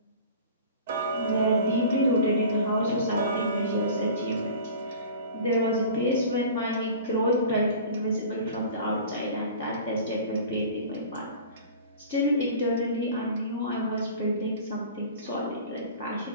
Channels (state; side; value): inverted; both; correlation -0.40